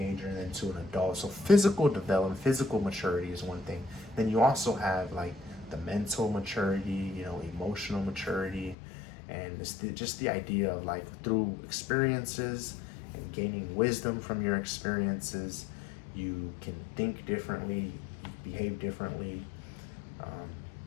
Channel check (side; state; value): right; drops out; at 8.8 s